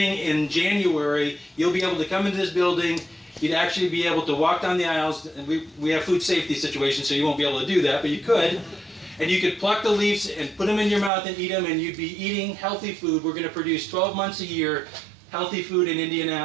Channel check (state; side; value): drops out; left; at 11.1 s